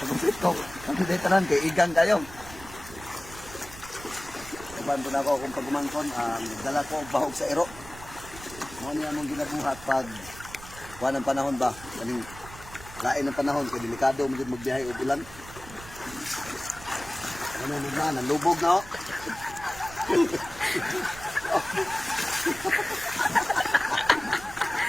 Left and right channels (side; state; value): right; noise; rumble, 16 dB below the sound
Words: ko. Kami dito tanan kay igang kayo. Kaban po na ako kung pagumangkon, dala ko og bahog sa ero. Mo ni among ginabuhat pag kuan ang panahon ba? Kaning lain ang panahon kay delikado mo magbiyahe og ulan. Ano na, nalubog na.